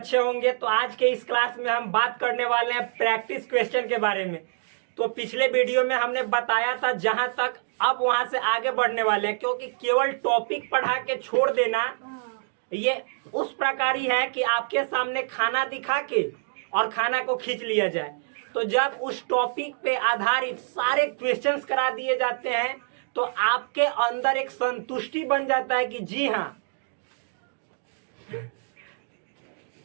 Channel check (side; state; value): left; silent; digital silence